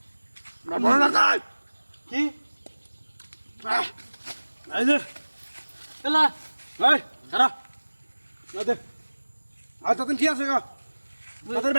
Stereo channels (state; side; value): inverted; both; correlation -1.00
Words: বড় না কাজ কি এই যে এলা এই খারা না দে আর তখন কি আছে গো তাদের